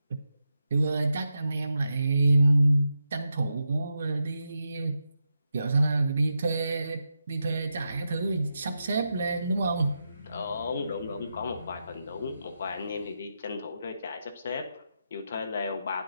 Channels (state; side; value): inverted; both; correlation -0.87